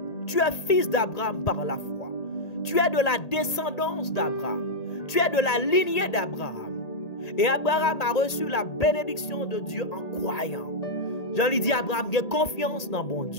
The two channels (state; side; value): late; right; 1.8 ms